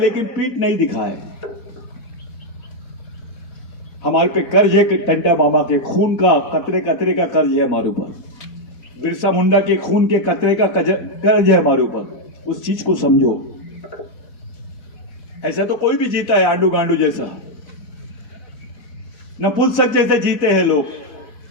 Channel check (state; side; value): late; right; 4.0 ms